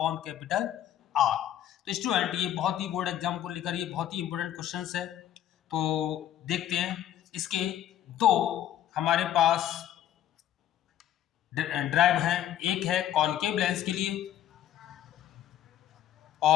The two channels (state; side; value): quieter; right; 11.4 dB